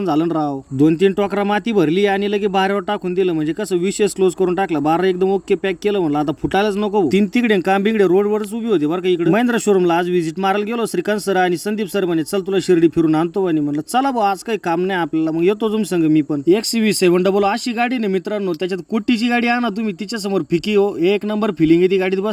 झालं राव. 2-3 टोकरा माती भरली आणि लगे बाहेरवर टाकून दिलं, म्हणजे कसं विशेष क्लोज करून टाकला. 12 एकदम ओके पॅक केलं, म्हणलं आता फुटायलाच नको. 3 तिकडे कांबिंगडे रोडवरच उभी होती बरं का. इकडे महिंद्रा शोरूमला आज व्हिजिट मारायला गेलो. श्रीकांत सर आणि संदीप सर म्हणे चल तुला शिर्डी फिरून आणतो, आणि म्हणलं चला भाऊ आज काही काम नाही आपल्याला, मग येतो तुम संग मी पण. XCV700 अशी गाडी नाही मित्रांनो, त्याच्यात कोटीची गाडी आणा तुम्ही, तिच्या समोर फिकी हो, एक नंबर फिलिंग आहे ती गाडीत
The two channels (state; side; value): identical; both; correlation 1.00